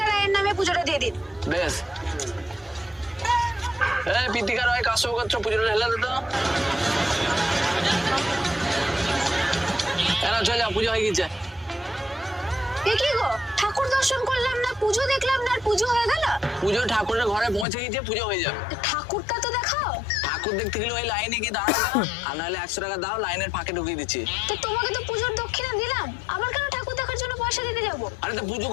রায়ের নামে পুজোটা দিয়ে দিন। বেশ। প্রীতিকা রায় কাশ্যপ গোত্র পুজোটা ঢেলে দে তো। চলে যাও, পুজো হয়ে গেছে। এ কি গো, ঠাকুর দর্শন করলাম না, পুজো দেখলাম না, আর পুজো হয়ে গেল? পুজো ঠাকুরের ঘরে পৌঁছে গেছে, পুজো হয়ে যাবে। ঠাকুরটা তো দেখাও। ঠাকুর দেখতে গেলে ওই লাইনে গিয়ে দাঁড়াবে, আর নাহলে 100 টাকা দাও, লাইনের ফাঁকে ঢুকিয়ে দিচ্ছি। তো তোমাকে তো পুজোর দক্ষিণা দিলাম, আবার কেন ঠাকুর দেখার জন্য পয়সা দিতে যাবো? আরে তো পুজো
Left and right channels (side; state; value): right; drops out; at 17.7 s